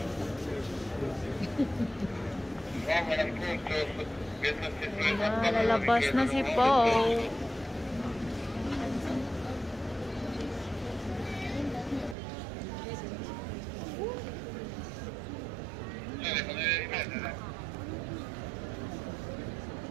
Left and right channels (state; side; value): drops out; left; at 12.2 s